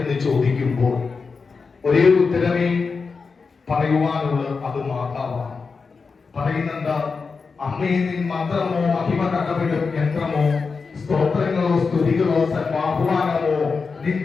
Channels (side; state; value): right; quieter; 4.8 dB